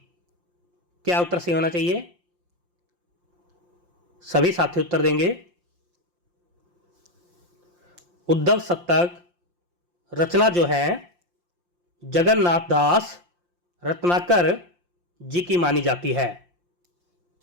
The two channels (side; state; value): left; late; 5.7 ms